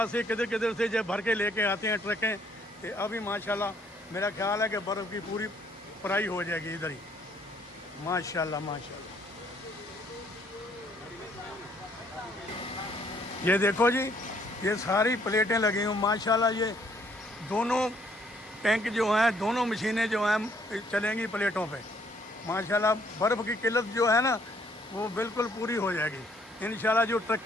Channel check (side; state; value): both; normal; correlation 0.65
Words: से किधर किधर से जब भर के लेके आते हैं ट्रकें तो अभी माशाल्लाह मेरा ख्याल है कि बर्फ़ की पूरी पराई हो जाएगी इधर ही माशाल्लाह माशाल्लाह ये देखो जी ये सारी प्लेटें लगी हुई माशाल्लाह ये दोनों टैंक जो हैं दोनों मशीनें जो हैं चलेंगी प्लेटों पे माशाल्लाह बर्फ़ की किल्लत जो है ना वो बिल्कुल पूरी हो जाएगी इंशाल्लाह जो